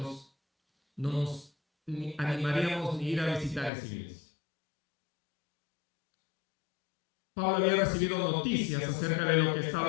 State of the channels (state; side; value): drops out; right; at 3.7 s